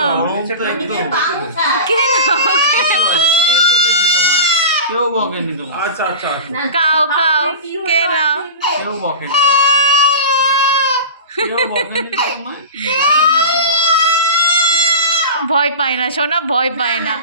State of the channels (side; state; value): both; inverted; correlation -0.31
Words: কে নাও। কেউ বকেনি তোমার। আচ্ছা আচ্ছা খাও খাও, কে নাও। কেউ বকেনি, কেউ বকেনি তোমার। ভয় পায় না সোনা, ভয় পায় না।